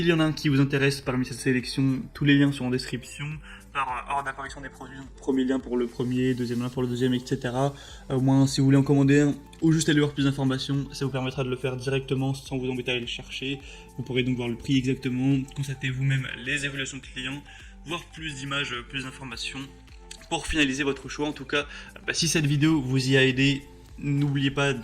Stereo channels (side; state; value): both; identical; correlation 1.00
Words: y en a un qui vous intéresse parmi cette sélection, tous les liens sont en description. Par ordre d'apparition des produits, donc premier lien pour le premier, deuxième lien pour le deuxième, etc. Au moins si vous voulez en commander un ou juste aller voir plus d'informations, ça vous permettra de le faire directement sans vous embêter à aller le chercher. Vous pourrez donc voir le prix exactement, constater vous-même les évaluations clients, voir plus d'images, plus d'informations pour finaliser votre choix. En tout cas, si cette vidéo vous y a aidé, n'oubliez pas